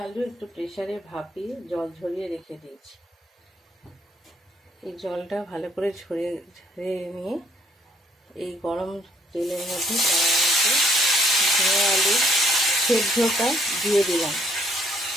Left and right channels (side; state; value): both; normal; correlation 0.66